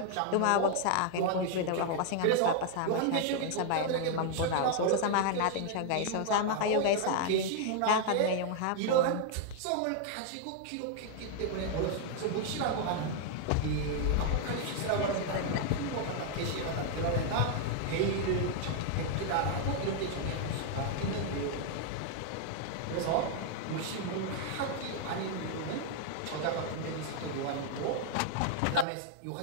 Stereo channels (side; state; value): both; different; correlation 0.00